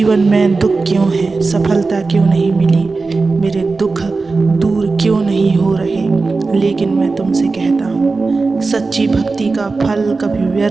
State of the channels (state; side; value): quieter; left; 3.9 dB